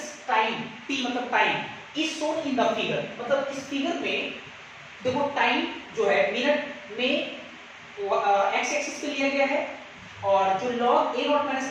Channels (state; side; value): identical; both; correlation 1.00